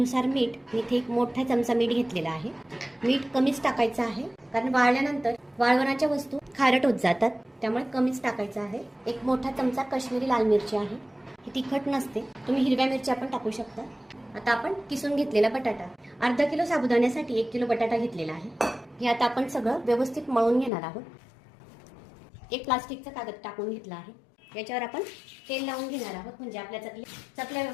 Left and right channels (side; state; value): right; drops out; at 20.7 s